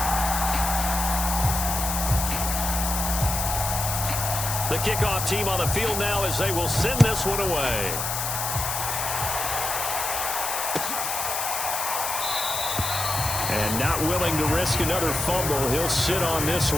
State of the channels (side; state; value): left; noise; hiss, 2 dB below the sound